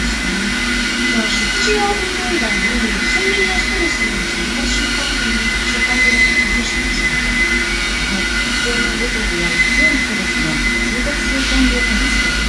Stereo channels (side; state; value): both; identical; correlation 1.00